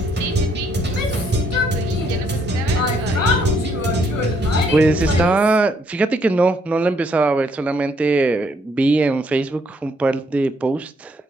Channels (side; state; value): both; normal; correlation 0.70